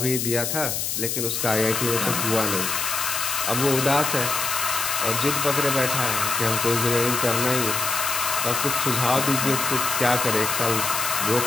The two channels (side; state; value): left; noise; hiss, 1 dB below the sound